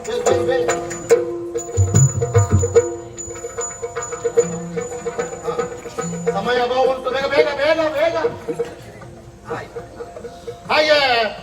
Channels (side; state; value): both; identical; correlation 1.00